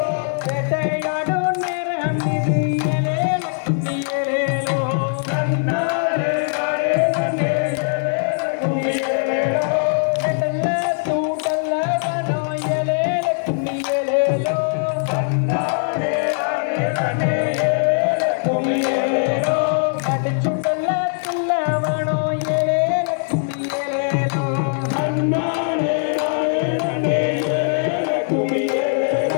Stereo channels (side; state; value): right; silent; 65 dB below the other